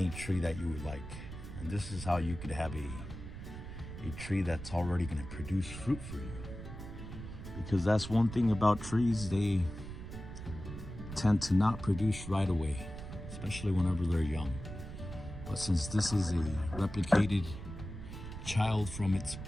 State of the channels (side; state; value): right; noise; rumble, 10 dB below the sound